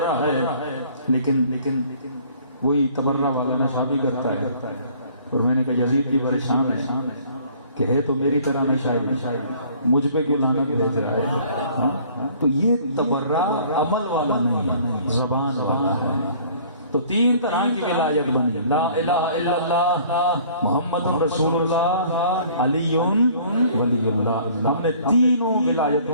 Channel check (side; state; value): both; inverted; correlation -0.54